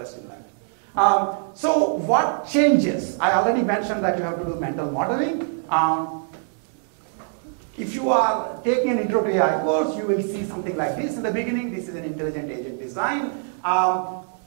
in that. So what changes? I already mentioned that you have to do mental modeling. If you are taking an intro to AI course, you will see something like this in the beginning. This is an intelligent agent design.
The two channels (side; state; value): left; silent; 63 dB below the other